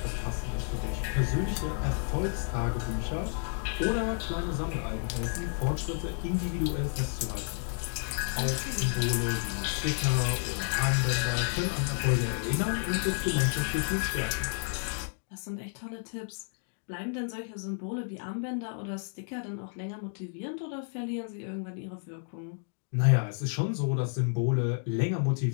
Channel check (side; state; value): right; silent; 57 dB below the other